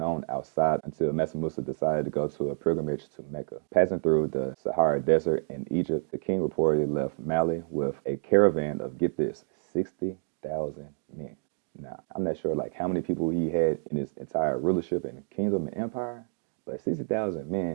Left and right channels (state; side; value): silent; left; digital silence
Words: outside until Mansa Musa decided to go to a pilgrimage to Mecca. Passing through the Sahara Desert in Egypt, the king reportedly left Mali with a caravan of, get this, 60,000 men. Now, I'm not sure like how many people he had in his entire rulership and kingdom and empire, but 60,000